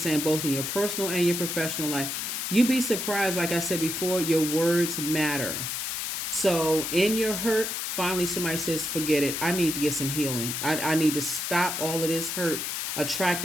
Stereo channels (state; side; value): noise; left; hiss, 3 dB below the sound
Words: saying, both in your personal and your professional life. You'd be surprised, like I said before, your words matter. So in your hurt, finally somebody says, forget it. I need to get some healing. I need to stop all of this hurt